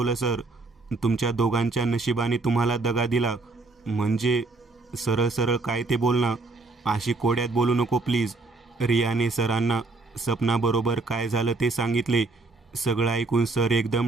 सर. तुमच्या दोघांच्या नशिबाने तुम्हाला दगा दिला. म्हणजे सरळ सरळ काय ते बोल ना, अशी कोड्यात बोलू नको प्लीज. रियाने सरांना सपनाबरोबर काय झालं ते सांगितले. सगळं ऐकून सर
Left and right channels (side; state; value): left; quieter; 3.4 dB